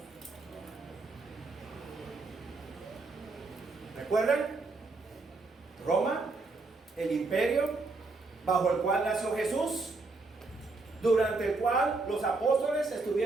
¿Recuerdan? Roma, el imperio bajo el cual nació Jesús, durante el cual los apóstoles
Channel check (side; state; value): left; quieter; 3.6 dB